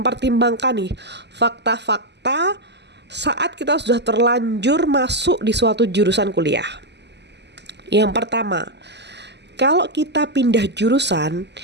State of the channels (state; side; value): late; left; 0.50 ms